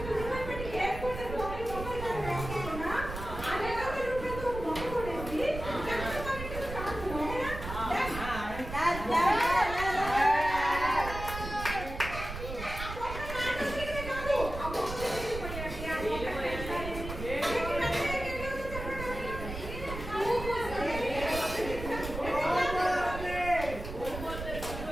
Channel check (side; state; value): right; noise; rumble, 8 dB below the sound